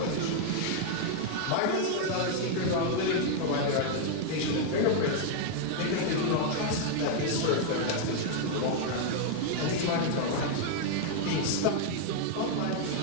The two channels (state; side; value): different; both; correlation 0.00